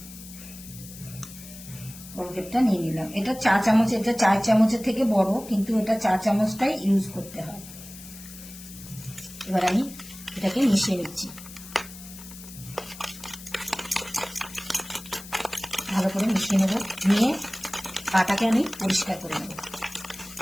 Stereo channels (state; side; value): noise; left; hiss, 15 dB below the sound